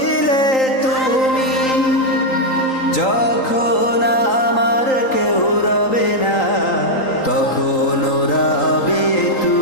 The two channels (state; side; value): late; right; 3.8 ms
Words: তুমি, যখন আমার কেউ রবে না তখন রবে